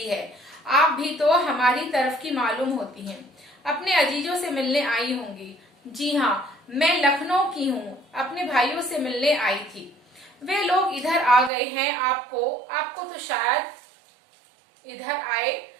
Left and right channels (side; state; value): left; drops out; at 11.5 s